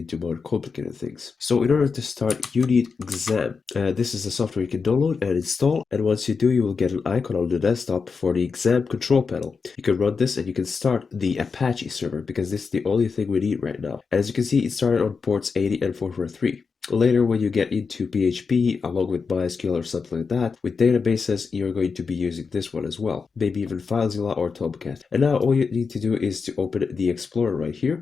more complicated things. So in order to start, you need Exam. This is a software you can download and install, and once you do, you will get an icon on the desktop for the Exam control panel. You can run this and you can start the Apache server because this is the only thing we need right now. As you can see, it started on ports 80 and 443. Later, when you get into PHP, along with MySQL or something like that, with databases, you're going to be using this one as well, maybe even FileZilla or Tomcat. And now all you need to do is to open the Explorer right here,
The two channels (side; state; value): right; quieter; 5.2 dB